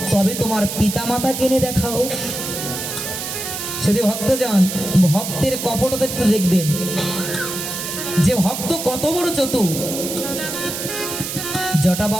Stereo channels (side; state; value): right; noise; hiss, 5 dB below the sound